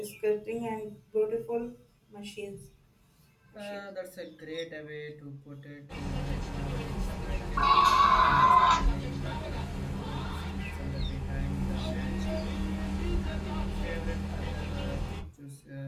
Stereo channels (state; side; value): identical; both; correlation 1.00